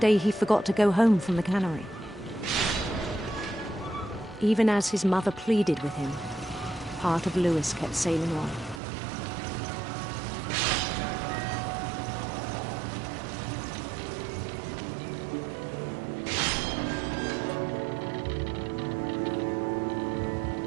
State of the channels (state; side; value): drops out; left; at 8.8 s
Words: he forgot to go home from the cannery. Even as his mother pleaded with him, part of Louis kept sailing on.